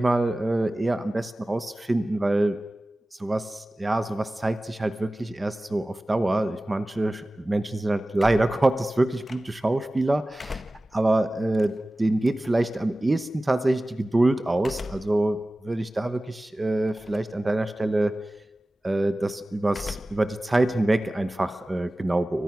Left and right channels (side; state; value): both; normal; correlation 0.96